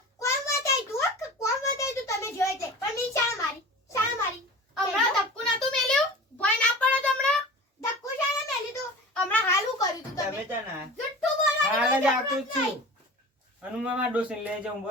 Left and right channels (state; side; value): normal; both; correlation 0.37